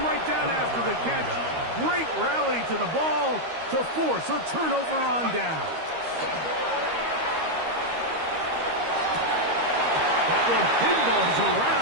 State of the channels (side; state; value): left; late; 13 ms